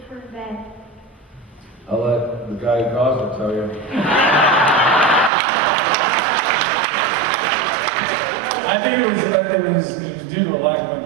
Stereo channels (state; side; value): drops out; left; at 5.3 s